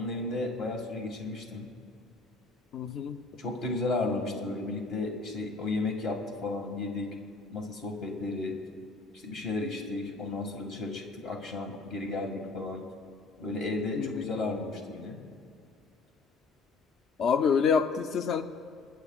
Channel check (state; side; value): quieter; right; 3.9 dB